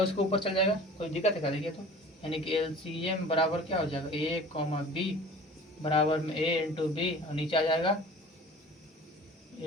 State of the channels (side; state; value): both; normal; correlation 0.43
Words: इसको ऊपर चल जाएगा, कोई दिक्कत है क्या, देखिए तो यानी कि LCM बराबर क्या हो जाएगा A कॉमा B बराबर में A इंटू B और नीचे आ जाएगा